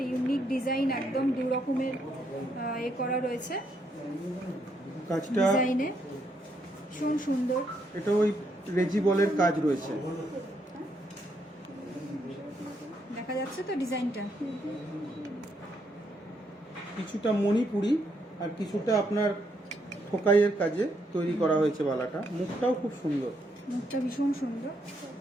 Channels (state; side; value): normal; both; correlation 0.75